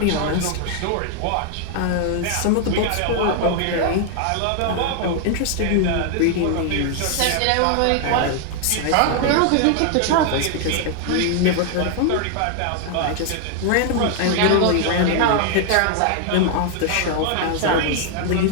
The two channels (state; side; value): different; both; correlation 0.00